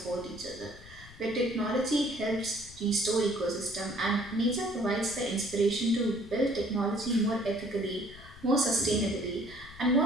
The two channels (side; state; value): left; noise; rumble, 19 dB below the sound